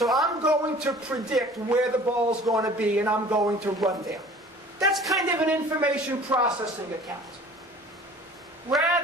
I'm going to predict where the ball's going to be and I'm going to run there. That's kind of an information processing account.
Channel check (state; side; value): normal; both; correlation 0.47